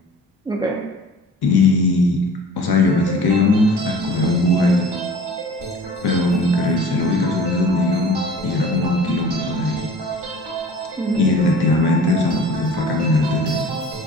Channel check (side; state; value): both; normal; correlation 0.45